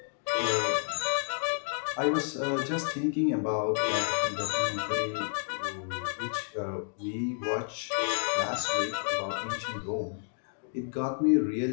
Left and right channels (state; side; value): silent; right; 57 dB below the other